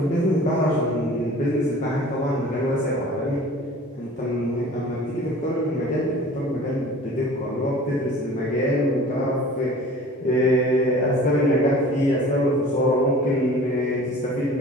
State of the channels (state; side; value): normal; both; correlation 0.44